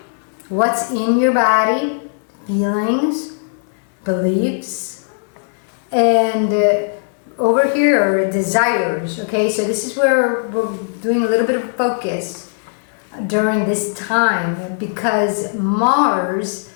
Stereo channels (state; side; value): silent; right; digital silence